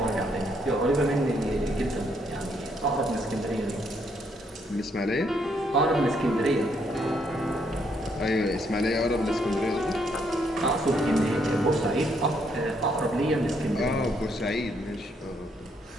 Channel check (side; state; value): both; normal; correlation 0.72